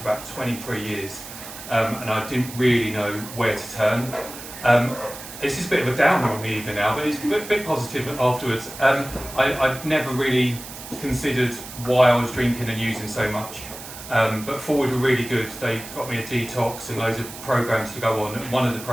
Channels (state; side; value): noise; right; hiss, 13 dB below the sound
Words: about 23 years. And I didn't really know where to turn. This is a bit of a downer on the evening now, but it's a bit positive afterwards. I'd never really considered why I was drinking and using so much. But Forward were really good. They got me a detox and loads of programs to go on. One of the